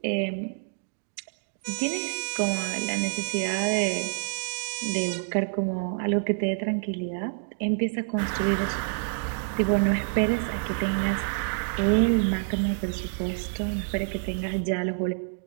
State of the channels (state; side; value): silent; left; digital silence